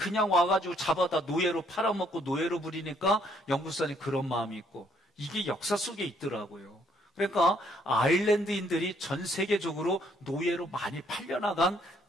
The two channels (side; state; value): both; normal; correlation 0.67